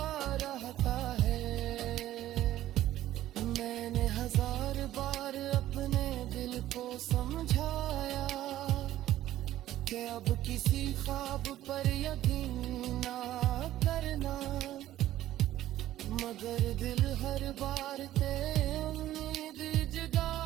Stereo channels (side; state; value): left; quieter; 13.8 dB